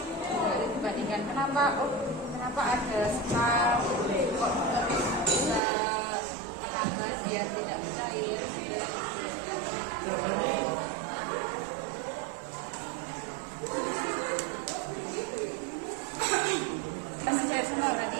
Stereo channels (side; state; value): left; drops out; at 5.6 s